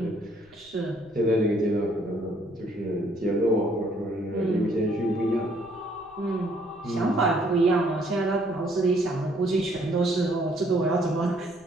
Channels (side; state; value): left; noise; rumble, 28 dB below the sound